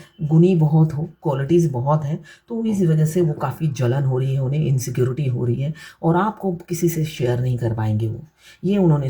गुणी बहुत हो, क्वालिटीज़ बहुत हैं, तो इस वजह से वो काफ़ी जलन हो रही है, उन्हें इनसिक्योरिटी हो रही है और आपको किसी से शेयर नहीं कर पाएंगे वो। ये उन्होंने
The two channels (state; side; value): identical; both; correlation 1.00